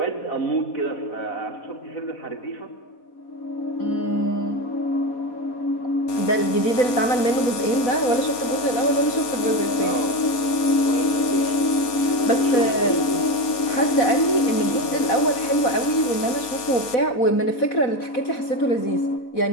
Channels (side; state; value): right; late; 4.3 ms